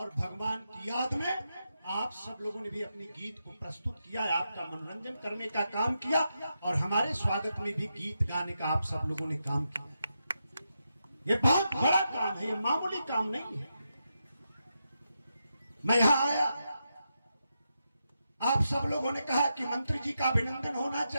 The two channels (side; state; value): both; inverted; correlation -0.86